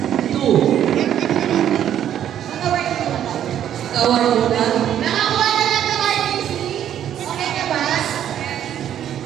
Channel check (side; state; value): left; quieter; 10.4 dB